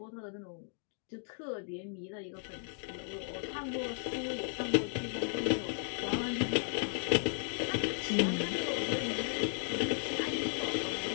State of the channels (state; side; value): silent; right; 54 dB below the other